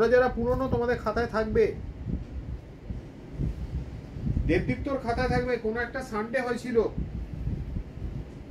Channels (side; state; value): both; identical; correlation 1.00